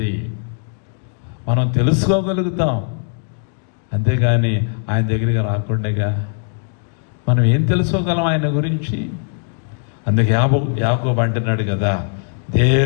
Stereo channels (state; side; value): silent; right; digital silence